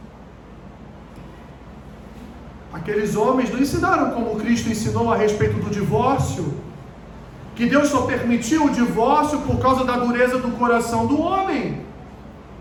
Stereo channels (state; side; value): identical; both; correlation 1.00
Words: Aqueles homens não ensinaram como Cristo ensinou a respeito do divórcio, que Deus só permitiu o divórcio por causa da dureza do coração do homem.